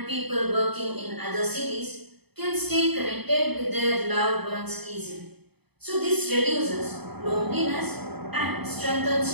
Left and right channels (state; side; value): late; left; 0.98 ms